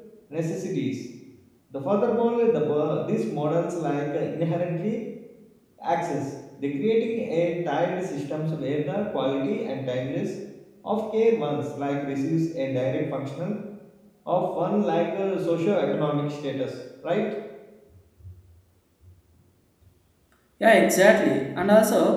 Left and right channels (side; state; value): both; identical; correlation 1.00